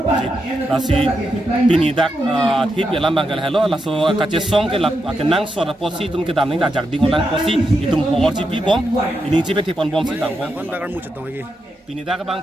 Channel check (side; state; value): both; normal; correlation 0.85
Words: lasi pini dak thip ya lambang gal hello laso kache song ke lap akenang sora posi tum ke dam ning da jak ding ulang posi itum hor ji pi bom ini ji pe te pon bom si dang bom kon bakar mu chetong gi pini dak